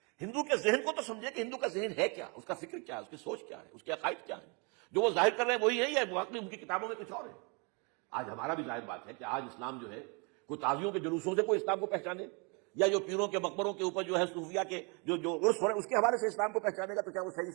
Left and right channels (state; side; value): quieter; left; 33.2 dB